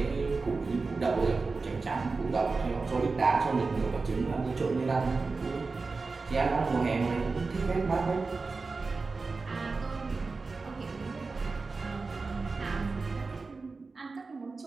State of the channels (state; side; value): quieter; left; 4.1 dB